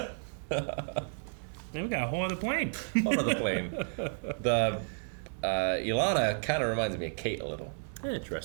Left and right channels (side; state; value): left; silent; 56 dB below the other